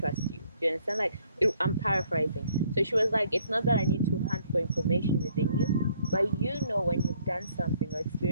you. Do you understand? Like, I'm paraphrasing. So she was like, it's not that I need to hunt for information within you, but when you've done something or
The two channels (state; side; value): inverted; both; correlation -0.65